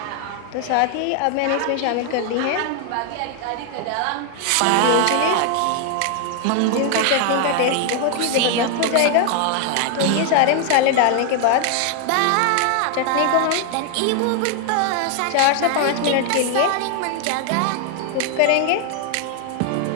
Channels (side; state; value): both; different; correlation 0.00